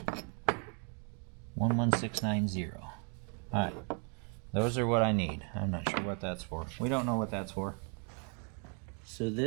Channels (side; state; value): left; quieter; 39.6 dB